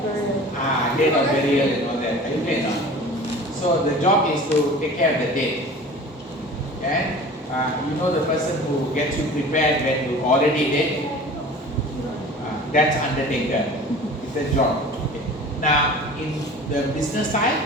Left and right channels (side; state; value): both; normal; correlation 0.41